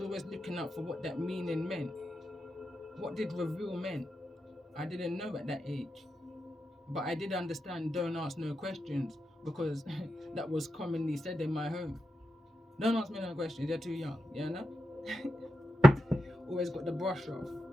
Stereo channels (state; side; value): normal; both; correlation 0.88